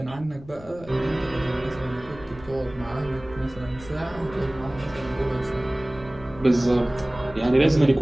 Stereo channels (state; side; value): noise; left; rumble, 18 dB below the sound